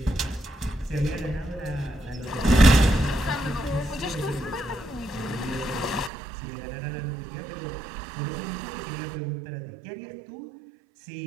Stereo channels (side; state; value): left; drops out; at 6.1 s